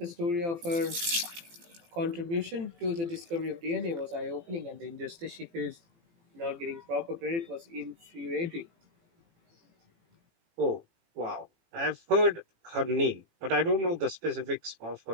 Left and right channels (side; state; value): left; late; 18 ms